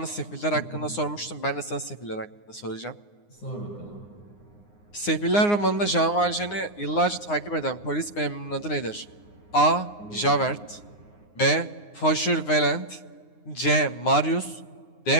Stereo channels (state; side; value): late; right; 9.7 ms